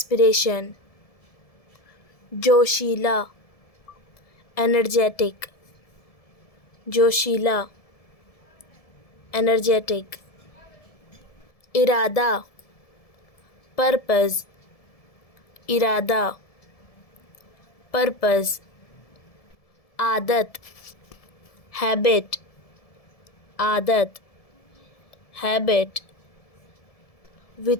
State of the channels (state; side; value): late; right; 1.7 ms